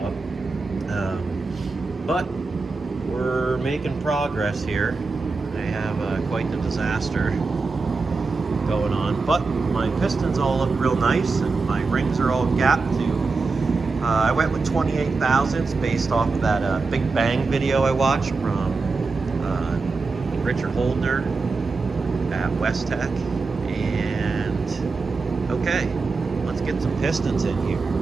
But we're making progress here. I have quite the disaster going on, but my pistons all look real nice and my rings are all gapped too. I went with 28 thousandths based off of that Big Bang video I watched from Richard Holdner at West Tech. And okay, let's get some pistons in here.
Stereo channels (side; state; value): left; quieter; 4.1 dB